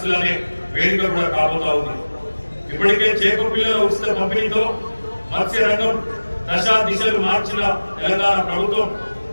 అనే వేదిక కూడా కాబోతా ఉంది. ఇప్పటికే చేప పిల్లల ఉచిత పంపిణీతో మత్స్య రంగం దశా దిశలు మార్చిన తెలంగాణ ప్రభుత్వం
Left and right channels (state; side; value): inverted; both; correlation -1.00